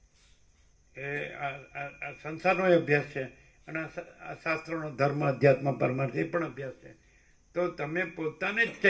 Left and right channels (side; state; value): both; identical; correlation 1.00